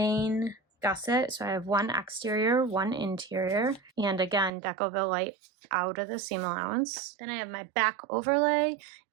gusset. So I have one exterior, one interior, and again, Decoville light out of the seam allowance. Then I have my back overlay,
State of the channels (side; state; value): left; drops out; at 4.5 s